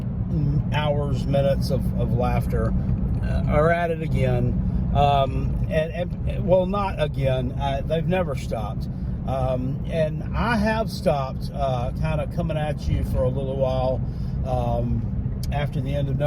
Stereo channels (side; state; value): both; identical; correlation 1.00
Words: minutes of laughter are at it again. Well, not again. They've never stopped. And I have stopped kind of coming at you for a little while. After the end of